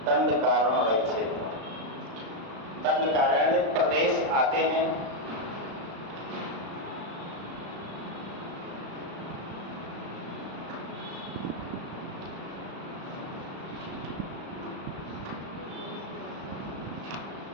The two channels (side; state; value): left; late; 36 ms